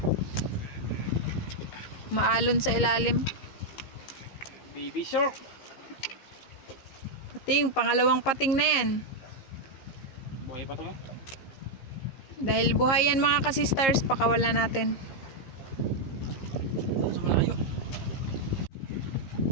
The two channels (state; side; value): late; right; 15 ms